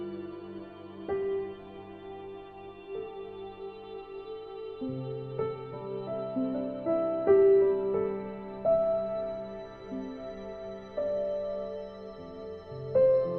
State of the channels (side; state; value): both; identical; correlation 1.00